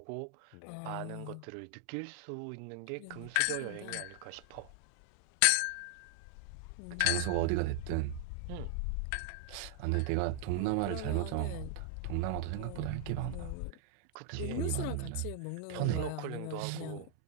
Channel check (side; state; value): both; different; correlation 0.00